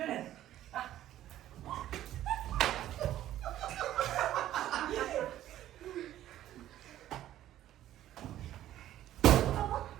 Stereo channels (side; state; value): left; quieter; 12.9 dB